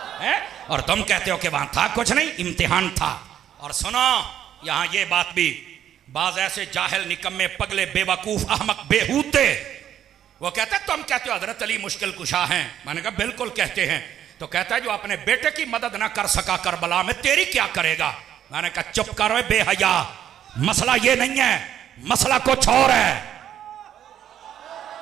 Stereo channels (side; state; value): left; quieter; 10.4 dB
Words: है, और तुम कहते हो कि वहां था कुछ नहीं, इम्तिहान था। और सुनो यहां ये बात भी, बाज ऐसे जाहिल निकम्मे पगले बेवकूफ अहमक बेहूते वो कहते तुम कहते हो हजरत अली मुश्किल कुशा हैं। मैंने कहा बिल्कुल कहते हैं। तो कहता है जो अपने बेटे की मदद ना कर सका करबला में, तेरी क्या करेगा? मैंने कहा चुप करो बेहया, मसला ये नहीं है, मसला कुछ और है।